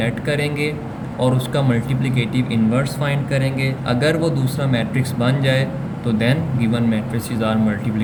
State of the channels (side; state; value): both; identical; correlation 1.00